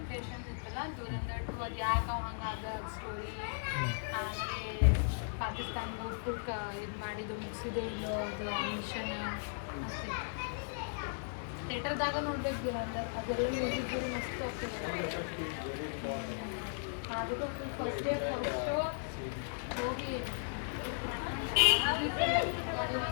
ಇತ್ತಲ್ಲ, ದುರಂದರ್ 2 ಅದು ಯಾಕೆ ಹಂಗಾದ ಸ್ಟೋರಿ. ಆಮೇಲೆ ಪಾಕಿಸ್ತಾನ ಫುಲ್ ಇದು ಮಾಡಿದ್ದು ಮುಗಿಸಿದ್ದು ಮಿಷನ್ ಅಷ್ಟೇ. ಥಿಯೇಟರ್ದಾಗ ನೋಡ್ಬೇಕು ದುರಂದರ್. ಅದೆಲ್ಲ ಮ್ಯೂಸಿಕ್ ಮಸ್ತ್ ಆಗ್ತದೆ. ಅದಕ್ಕೂ ಫಸ್ಟ್ ಇಯರ್ ಫಸ್ಟ್ ಶೋ ಹೋಗಿ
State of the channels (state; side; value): silent; right; digital silence